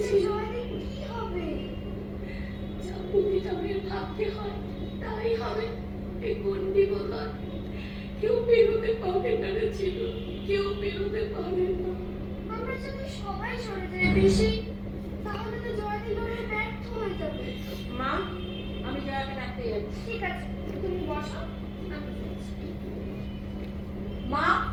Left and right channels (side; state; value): both; identical; correlation 1.00